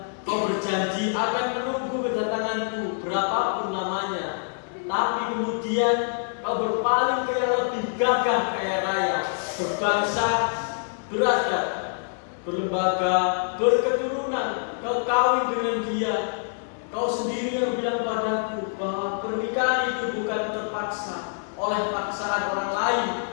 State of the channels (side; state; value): right; silent; digital silence